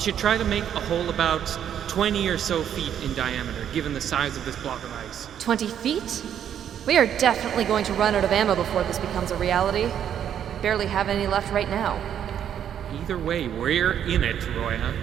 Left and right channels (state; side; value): quieter; left; 9.5 dB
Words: should try to make a hole about 20 or so feet in diameter, given the size of this block of ice. 20 feet? We are definitely going to run out of ammo before this becomes a reality. Barely have any left right now. Either way, we're in it, Roya.